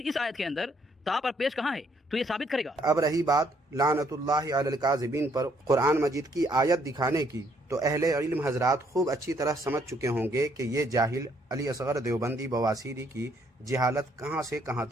اس آیت کے اندر تا پر پیش کہاں ہے؟ تو یہ ثابت کرے گا۔ اب رہی بات لعنت اللہ علی الکاذبین پر قرآن مجید کی آیت دکھانے کی، تو اہل علم حضرات خوب اچھی طرح سمجھ چکے ہوں گے کہ یہ جاہل علی اصغر دیوبندی بواسیری کی جہالت کہاں سے کہاں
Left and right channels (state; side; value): normal; both; correlation 0.68